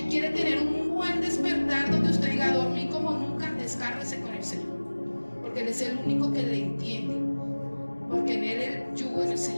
¿Quiere tener un buen despertar donde usted diga, dormí como nunca? Descárguese con el Señor, porque Él es el único que le entiende, porque en Él el yugo es el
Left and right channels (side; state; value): both; inverted; correlation -1.00